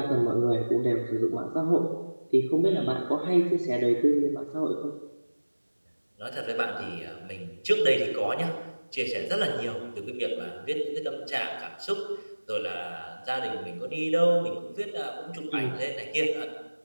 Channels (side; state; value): both; inverted; correlation -1.00